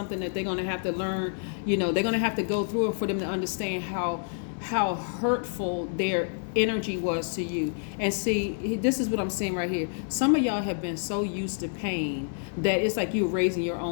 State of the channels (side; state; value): right; silent; 59 dB below the other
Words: that they're gonna have to learn. You know, they're gonna have to go through it for them to understand how hurtful their energy was to you. And see, this is what I'm saying right here. Some of y'all have been so used to pain that it's like you're raising your